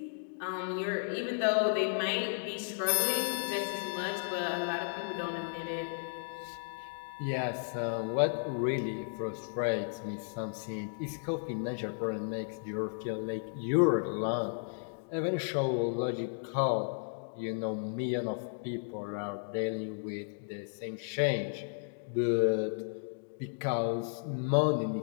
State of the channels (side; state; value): right; silent; digital silence